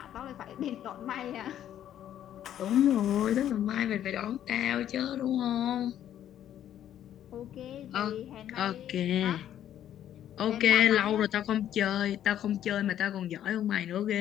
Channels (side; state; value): right; quieter; 11.0 dB